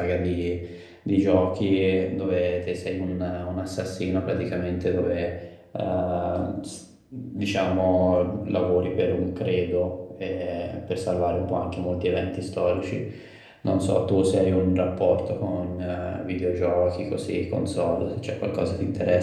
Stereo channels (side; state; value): both; identical; correlation 1.00